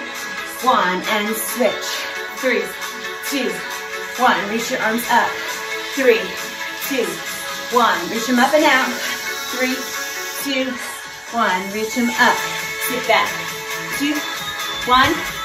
1, and switch. 3, 2, 1. Reach your arms up. 3, 2, 1. Reach them up and out. 3, 2, 1. Reach them up. Sit back. 2, 1.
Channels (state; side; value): identical; both; correlation 1.00